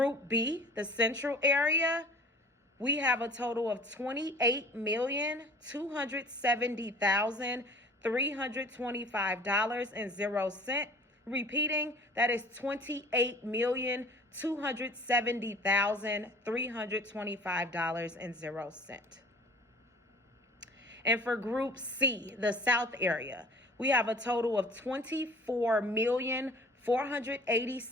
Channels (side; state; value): both; normal; correlation 0.48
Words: B, the Central area, we have a total of $28,270,325.00. Repeating, that is $28,270,325.00. And for Group C, the South area, we have a total of